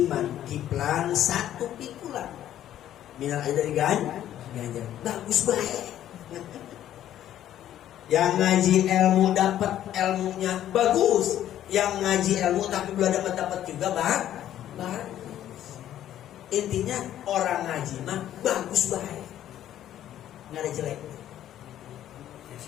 kiplan 1 pikulan minal ajri dari ganjar, bagus baik. Yang ngaji ilmu dapat ilmunya bagus, yang ngaji ilmu tapi belum dapat juga bagus. Intinya orang ngaji mah bagus baik, nggak ada jelek.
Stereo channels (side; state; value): right; quieter; 11.8 dB